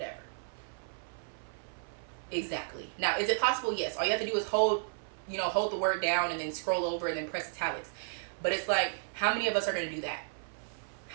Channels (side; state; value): left; silent; 55 dB below the other